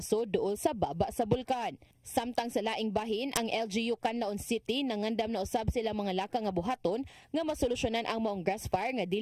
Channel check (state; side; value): identical; both; correlation 1.00